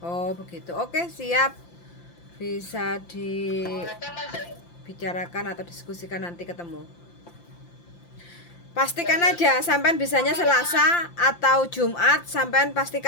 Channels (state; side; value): late; right; 5.8 ms